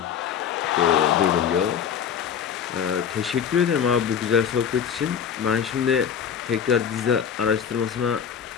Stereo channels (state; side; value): quieter; right; 7.9 dB